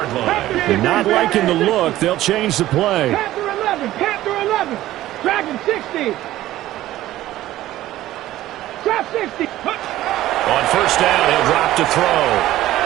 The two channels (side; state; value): left; quieter; 14.9 dB